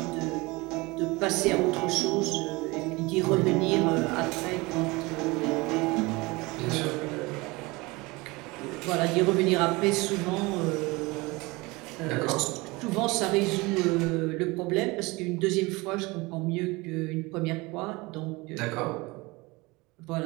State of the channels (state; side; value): quieter; left; 23.7 dB